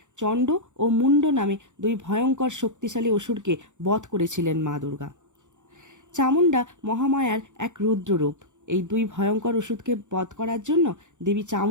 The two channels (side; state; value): left; late; 0.85 ms